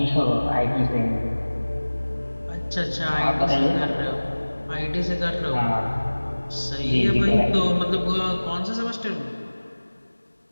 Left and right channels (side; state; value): both; inverted; correlation -1.00